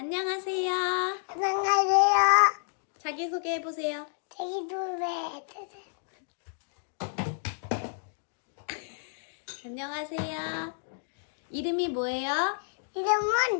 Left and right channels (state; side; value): silent; right; digital silence